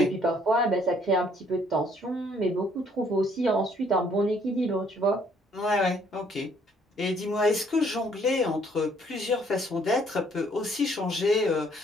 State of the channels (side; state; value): both; normal; correlation 0.64